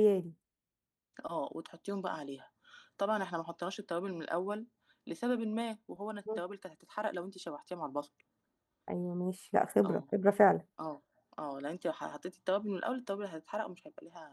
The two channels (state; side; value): identical; both; correlation 1.00